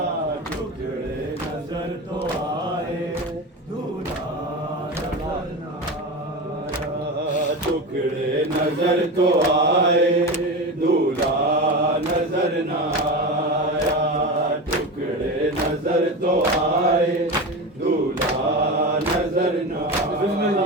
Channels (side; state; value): both; normal; correlation 0.24